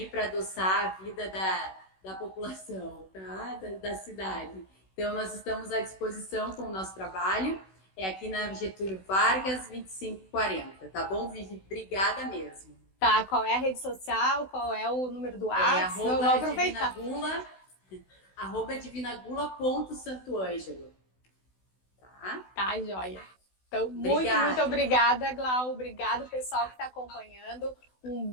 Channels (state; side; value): late; right; 16 ms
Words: para adoçar a vida da população, tá? Da cidade. Então, nós estamos à disposição com o nosso trabalho. É aqui na Getúlio Vargas, 2540, tá bom, Vivi? Obrigada mesmo. Tá, qual é a rede social? Qual é o número do É WhatsApp? Vou aproveitar. @divinagula.santoângelo. Tá? Tá, joia. Então, Obrigada. muito obrigada, Glau. Obrigado, pessoal que está acompanhando. Um